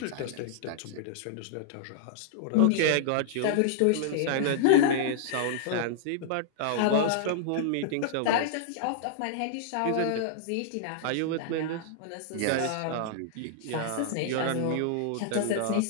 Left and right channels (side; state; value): both; different; correlation -0.01